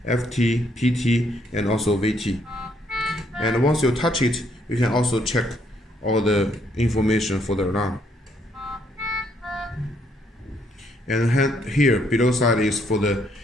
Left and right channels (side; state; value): both; normal; correlation 0.70